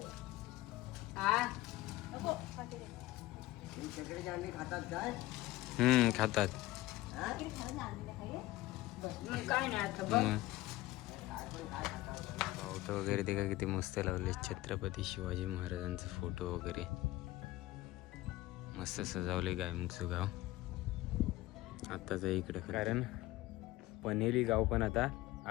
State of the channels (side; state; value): right; quieter; 17.7 dB